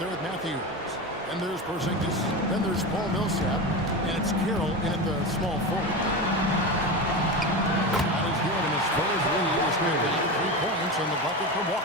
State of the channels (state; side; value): normal; both; correlation 0.22